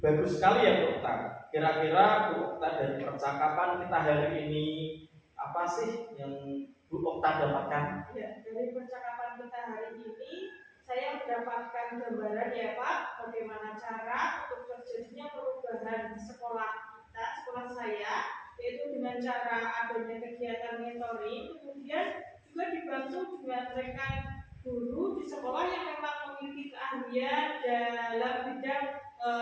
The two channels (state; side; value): identical; both; correlation 1.00